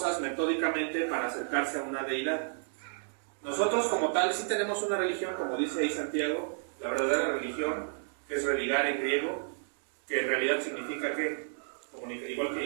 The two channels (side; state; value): left; silent; digital silence